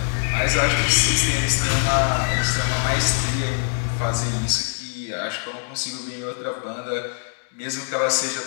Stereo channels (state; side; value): silent; right; digital silence